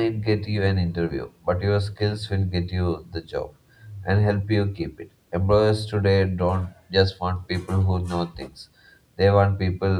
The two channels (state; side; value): identical; both; correlation 1.00